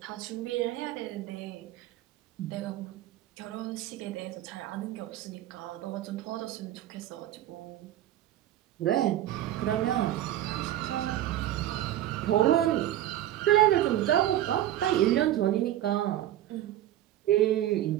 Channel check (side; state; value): left; quieter; 13.0 dB